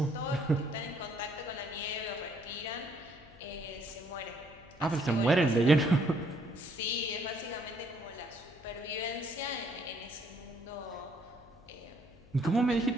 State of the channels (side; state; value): left; noise; hum, 23 dB below the sound